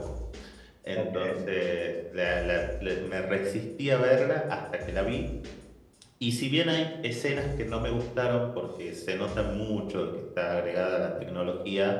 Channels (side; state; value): both; identical; correlation 1.00